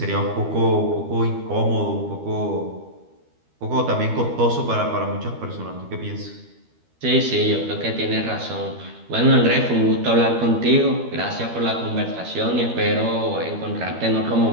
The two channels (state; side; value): late; left; 12 ms